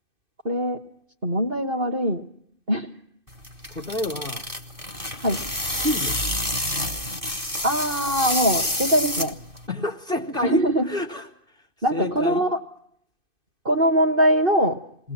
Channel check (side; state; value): left; late; 2.5 ms